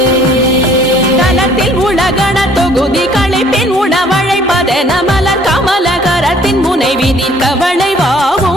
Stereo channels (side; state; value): both; normal; correlation 0.58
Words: தனத்தில் உலகண தொகுதி களைப்பின் உணவழைப்பதென மலர் கமலகரத்தின் முனை விதிர்க்க